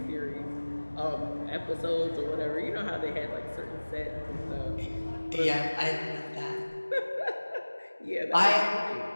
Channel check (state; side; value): inverted; both; correlation -1.00